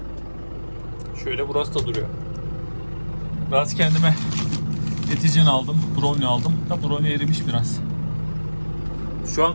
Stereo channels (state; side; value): inverted; both; correlation -1.00